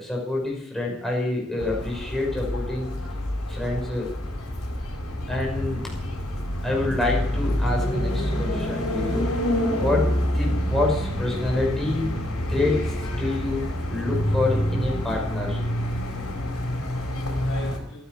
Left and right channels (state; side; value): normal; both; correlation 0.76